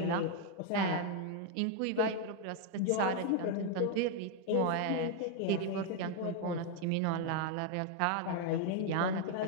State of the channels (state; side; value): different; both; correlation 0.01